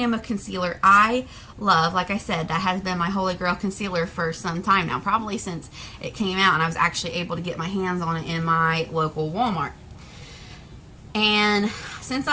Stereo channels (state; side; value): identical; both; correlation 1.00